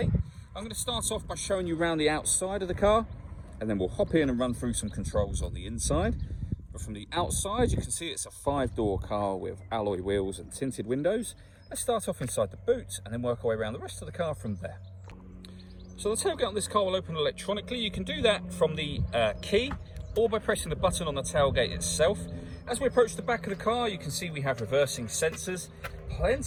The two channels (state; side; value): identical; both; correlation 1.00